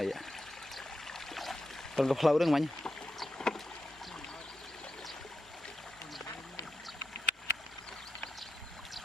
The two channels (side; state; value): both; normal; correlation 0.87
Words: còn có lâu được mấy